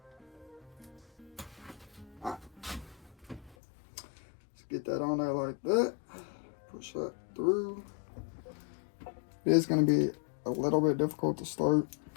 Alright. Let's get that on there like that. Push that through. It is going to be a little bit difficult to start.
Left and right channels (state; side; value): drops out; right; at 3.6 s